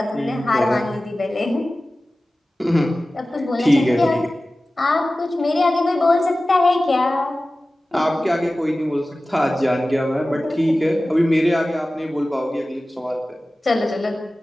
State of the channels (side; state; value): both; normal; correlation 0.96